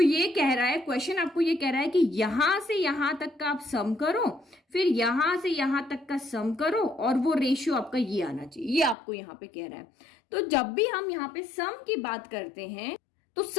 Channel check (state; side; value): drops out; right; at 9.0 s